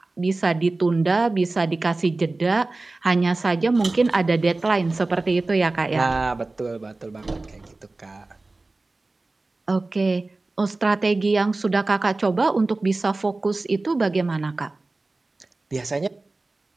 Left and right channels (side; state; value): left; quieter; 3.2 dB